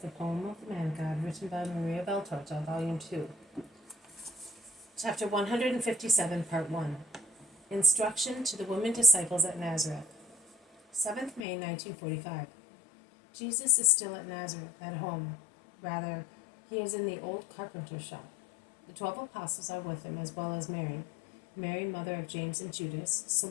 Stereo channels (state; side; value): drops out; right; at 11.5 s